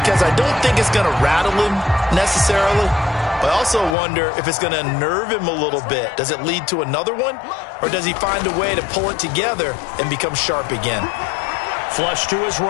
I don't think it's going to rattle him necessarily, I also wonder if it's going to unnerve him a little bit. Does it lead to another one? Or does he find a way to pull it together and become sharp again? Flush to his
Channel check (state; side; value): drops out; right; at 4.0 s